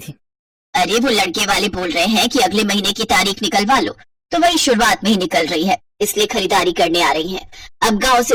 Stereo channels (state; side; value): identical; both; correlation 1.00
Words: अरे वो लड़के वाले बोल रहे हैं कि अगले महीने की तारीख निकलवा लो, तो वही शुरुआत में ही निकल रही है, इसलिए खरीदारी करने आ रही हैं। अब गांव